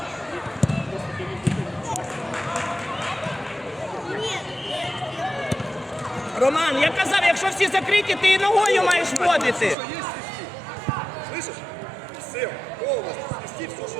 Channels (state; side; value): drops out; left; at 9.8 s